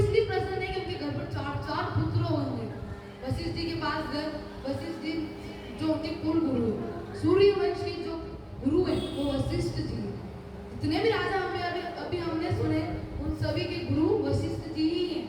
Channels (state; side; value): identical; both; correlation 1.00